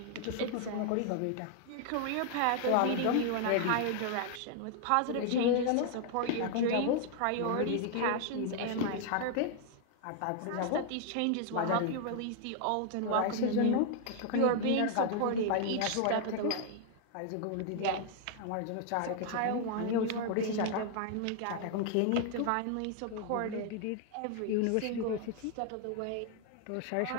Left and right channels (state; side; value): different; both; correlation 0.00